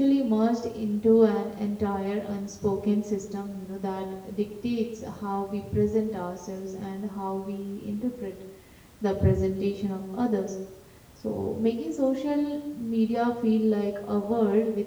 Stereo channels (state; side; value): identical; both; correlation 1.00